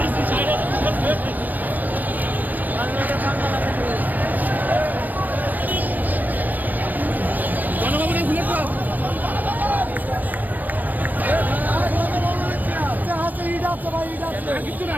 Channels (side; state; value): left; late; 0.083 ms